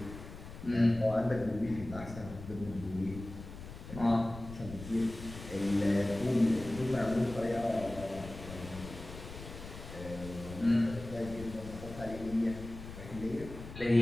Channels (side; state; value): left; noise; rumble, 12 dB below the sound